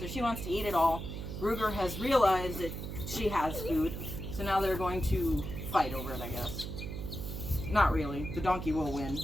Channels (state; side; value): noise; right; hum, 6 dB below the sound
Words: she wants to eat it all. Ruger has realized that she has food, so now they're going to fight over it, I guess. Not really. The donkey will win.